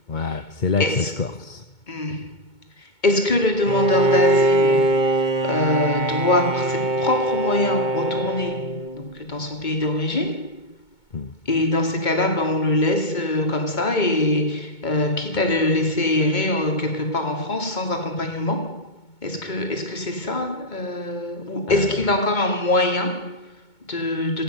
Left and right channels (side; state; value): right; late; 2.2 ms